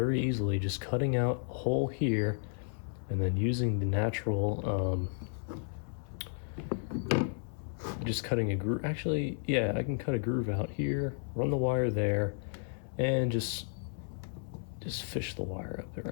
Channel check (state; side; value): silent; right; 56 dB below the other